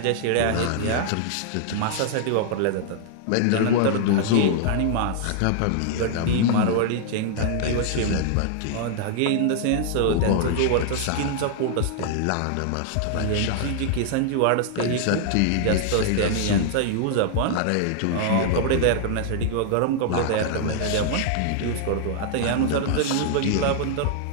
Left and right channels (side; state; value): both; different; correlation -0.01